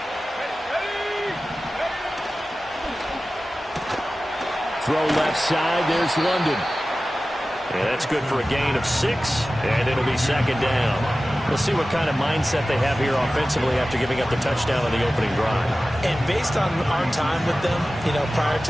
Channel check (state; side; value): normal; both; correlation 0.96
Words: Throw left side, there's London. Yeah, that's good for a gain of 6, and it'll be 2nd down. We'll see what kind of mindset they have here offensively after giving up the touchdown on the opening drive. And based on our time with them, prior